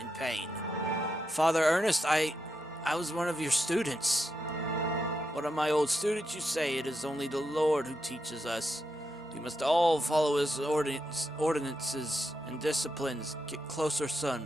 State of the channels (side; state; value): both; normal; correlation 0.85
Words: pain. Father Ernest, I was one of your students. One of my old students, you say. It is only the Lord who teaches us. We must all follow his ordinances and disciplines. Get closer, son.